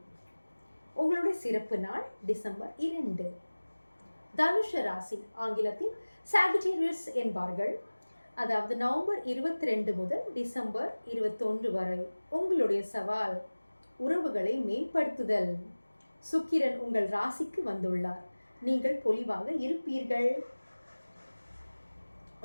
உங்களுடைய சிறப்பு நாள் டிசம்பர் 2. தனுஷ ராசி, ஆங்கிலத்தில் சாகிட்டேரியஸ் என்பார்கள், அதாவது நவம்பர் 22 முதல் டிசம்பர் 21 வரை உங்களுடைய சவால் உறவுகளை மேம்படுத்துதல். சுக்கிரன் உங்கள் ராசிக்கு வந்துள்ளார். நீங்கள் பொலிவாக இருப்பீர்கள்.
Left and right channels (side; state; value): both; inverted; correlation -1.00